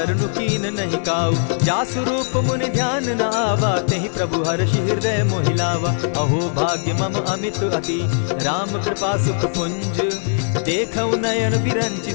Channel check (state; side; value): silent; right; digital silence